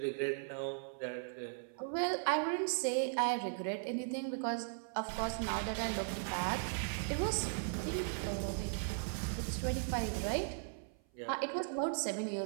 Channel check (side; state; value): left; silent; 53 dB below the other